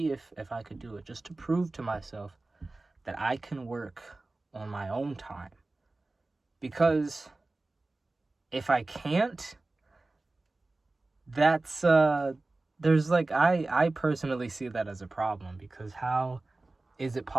if I could do it, just to prove to myself that I can work on my own time. Because if I can't, that's I personally see that as a problem, because how is it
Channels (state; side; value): quieter; left; 3.1 dB